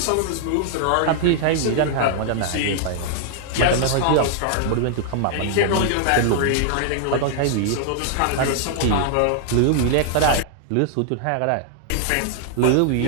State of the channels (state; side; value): different; both; correlation -0.01